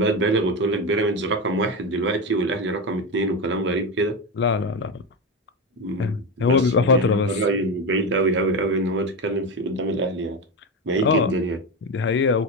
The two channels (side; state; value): both; normal; correlation 0.16